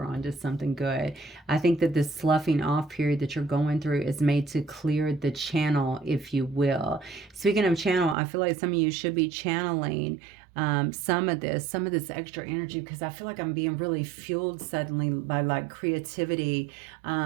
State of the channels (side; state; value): left; drops out; at 8.2 s